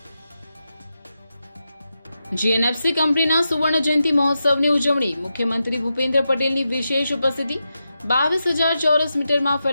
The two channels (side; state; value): both; inverted; correlation -0.88